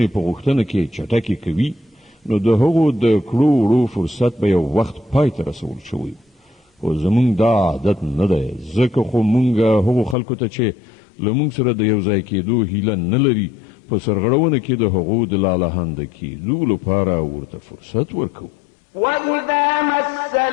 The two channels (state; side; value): drops out; right; at 10.2 s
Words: په غوښتنه کې چټکې کوي نو د هغو د کړو وړو فرصت به یو وخت پای ته رسول شوی خو زمونږ دا عادت نه دی ځکه خو مونږ هغو خلکو ته چې له مونږ سره د یو ځای کېدو هیله نه لري په سرغړونه کې د هغو د لالهانده کېدو لپاره ورته فرصت ورکوو وإذا مس